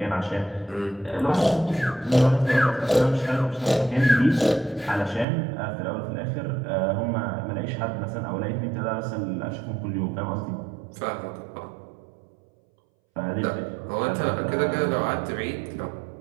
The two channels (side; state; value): left; drops out; at 5.2 s